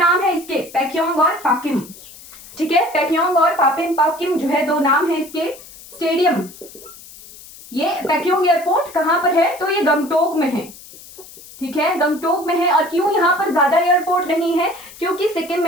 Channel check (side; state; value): left; noise; hiss, 19 dB below the sound